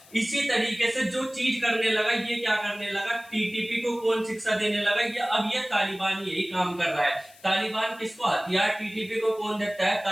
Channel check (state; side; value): noise; left; hiss, 24 dB below the sound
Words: इसी तरीके से जो चीज करने लगा, ये क्या करने लगा, टीटीपी को कौन शिक्षा देने लगा, ये अब ये तालिबान यही काम कर रहा है। तालिबान किसको हथियार, टीटीपी को कौन देता है?